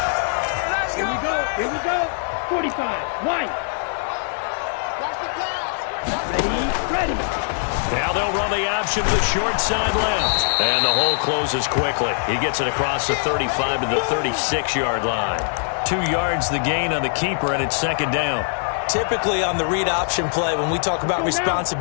Here we go. 45. White. Ready. Now they'll run the option to the short side left. And the hole closes quickly. He gets it across the 35 to the 36-yard line. 2 yards the gain on the keeper, and it's 2nd down. Typically on the read option play, when we talk about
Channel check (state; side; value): silent; right; digital silence